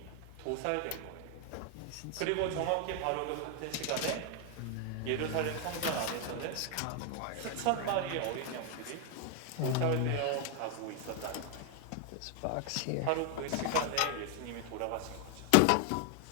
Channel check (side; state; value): both; different; correlation 0.01